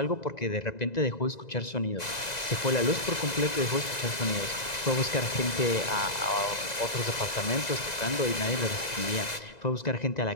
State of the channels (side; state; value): right; late; 2.0 ms